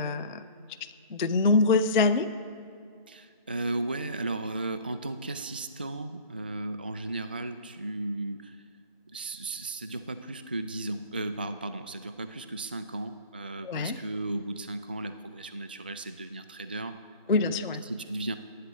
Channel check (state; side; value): inverted; both; correlation -0.46